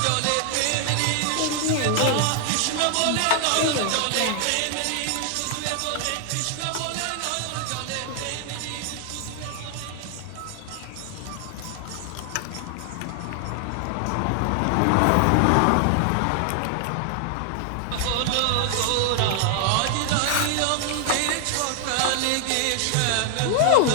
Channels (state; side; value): different; both; correlation 0.00